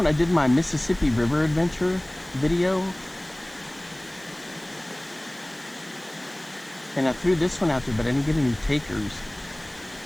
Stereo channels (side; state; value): right; noise; hiss, 23 dB below the sound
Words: I did my Mississippi River adventure video. And I threw this one out there, but I didn't get any takers.